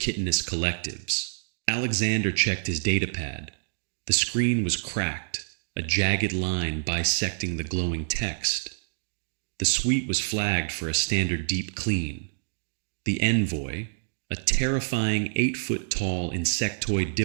collectives." Alexander checked his datapad. The screen was cracked, a jagged line bisecting the glowing text. The suite was flagged for a standard deep clean. The envoy, a terrifying 8-foot-tall insectoid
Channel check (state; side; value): silent; left; digital silence